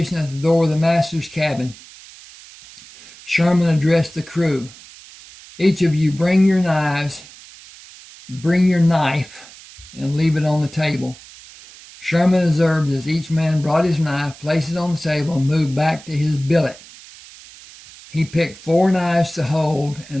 at the door of the master's cabin, Sherman addressed the crew. Each of you bring your knives, bring your knife, and leave it on the table. Sherman observed as each man brought his knife, placed it on the table, and moved back to his billet. He picked 4 knives to hold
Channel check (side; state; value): right; noise; hiss, 20 dB below the sound